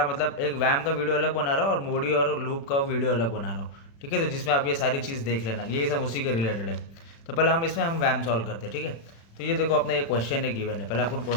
मतलब एक व्यायाम का वीडियो अलग बना रहा हूँ और मोडी और लूप का वीडियो अलग बना रहा हूँ। ठीक है, तो जिसमें आप ये सारी चीज़ देख लेना, ये सब उसी के रिलेटेड है। तो पहले हम व्यायाम सॉल्व करते हैं। ठीक है, तो ये देखो अपना ये क्वेश्चन है गिवन है। पहले अपन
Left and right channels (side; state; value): right; late; 36 ms